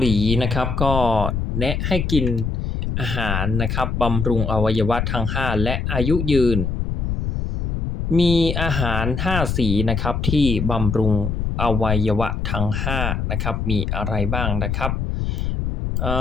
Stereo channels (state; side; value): noise; left; rumble, 1 dB below the sound